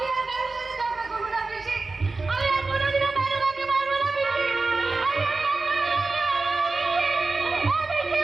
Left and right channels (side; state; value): left; quieter; 3.7 dB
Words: আর কারোর সাথে ঝগড়া করবো না বেশি, আমি আর কোনোদিনও কারো কাউকে মারবো না বেশি, আমি আর